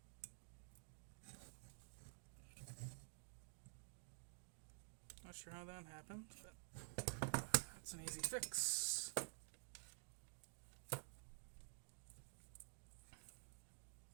Not sure how that happened, but that's an easy fix.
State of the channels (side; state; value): left; silent; digital silence